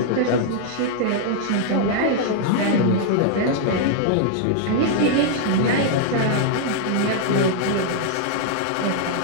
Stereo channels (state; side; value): different; both; correlation -0.01